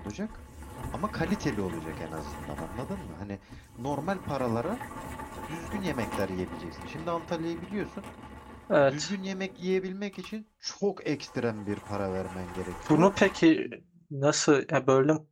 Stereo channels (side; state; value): both; identical; correlation 1.00